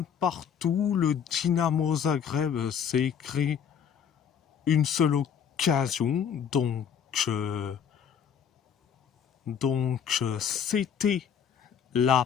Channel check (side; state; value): right; quieter; 7.8 dB